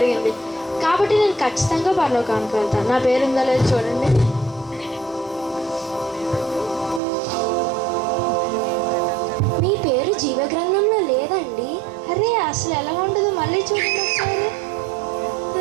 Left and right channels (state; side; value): drops out; left; at 7.0 s